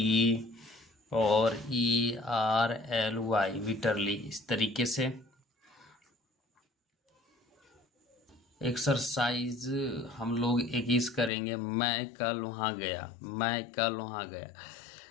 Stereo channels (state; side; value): drops out; right; at 11.3 s